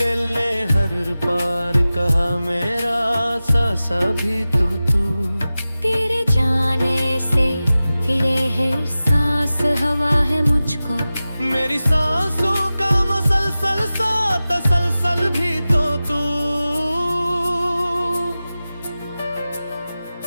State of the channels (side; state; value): both; inverted; correlation -0.96